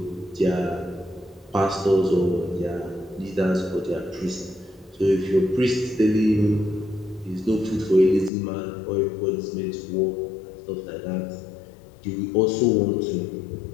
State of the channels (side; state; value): right; drops out; at 8.3 s